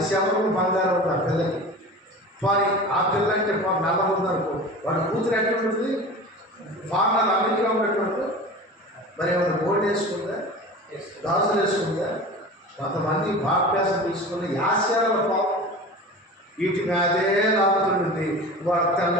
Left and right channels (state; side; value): normal; both; correlation 0.35